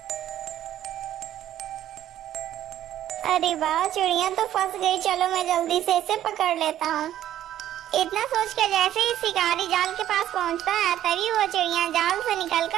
अरे वाह, चिड़िया तो फंस गई, चलो मैं जल्दी से इसे पकड़ लेता हूँ। इतना सोचकर जैसे ही शिकारी जाल के पास पहुँचता है तभी वो चिड़िया जाल से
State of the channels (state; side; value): quieter; left; 12.1 dB